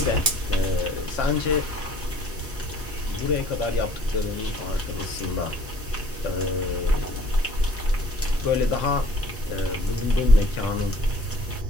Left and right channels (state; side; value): normal; both; correlation 0.55